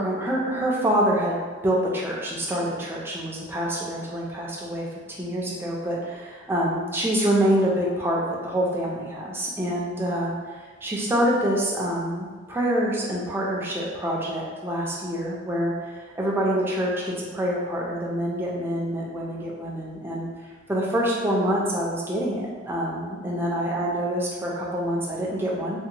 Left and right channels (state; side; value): normal; both; correlation 0.49